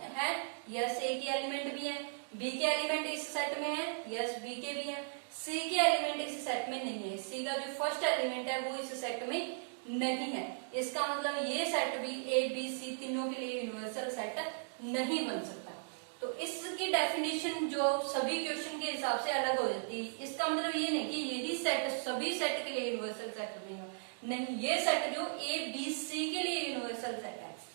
है, यस ए के एलिमेंट भी है, बी के एलिमेंट इस सेट में है, यस बी के भी है, सी के एलिमेंट इस सेट में नहीं है, सी का जो फर्स्ट एलिमेंट है वो इस सेट में नहीं है। इसका मतलब ये सेट भी ए बी सी तीनों के लिए यूनिवर्सल सेट नहीं बन सकता। तो इसकी डेफिनेशन जो सभी क्वेश्चन के हिसाब से अलग हो जाती है। इसका मतलब ये नहीं कि यही सेट सभी सेट के लिए यूनिवर्सल सेट बनेगा, नहीं, ये सेट जो ए बी सी के लिए यूनिवर्सल सेट है।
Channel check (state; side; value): silent; left; digital silence